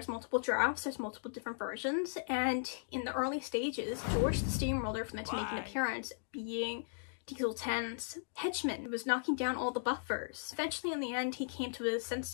multiple drafts, there's multiple different versions, and in the early stages, George the Steamroller was meant to make an appearance, being Diesel 10's henchman, who was knocking down all the buffers. Eventually, in the end, he came to his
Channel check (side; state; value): right; silent; digital silence